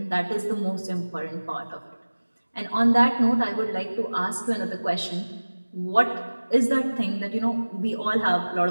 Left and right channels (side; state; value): both; inverted; correlation -1.00